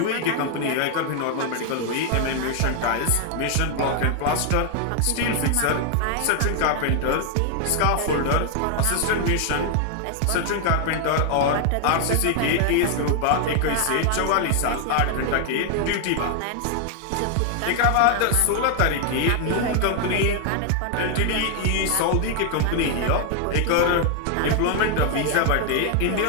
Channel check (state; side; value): different; both; correlation 0.00